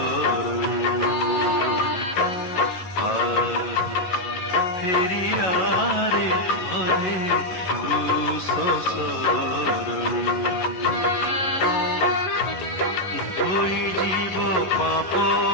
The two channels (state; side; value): late; right; 11 ms